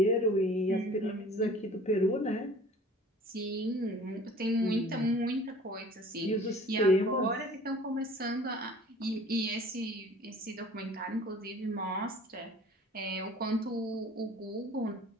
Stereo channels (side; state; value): both; normal; correlation 0.47